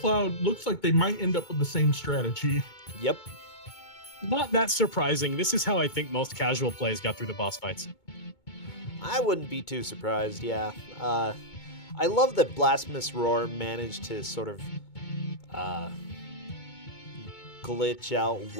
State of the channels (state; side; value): late; right; 2.2 ms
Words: looks like they might end up with the same strategy. Yep. Not that surprising. This is how I think most casual plays got through the boss fights. I wouldn't be too surprised, yeah. I love that Blasphemous Roar managed to sort of glitch out